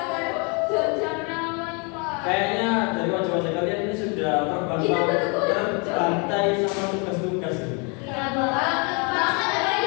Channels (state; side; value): quieter; right; 33.6 dB